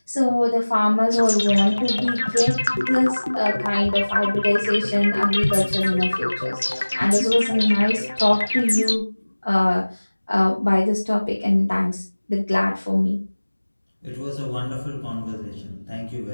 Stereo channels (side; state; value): both; inverted; correlation -1.00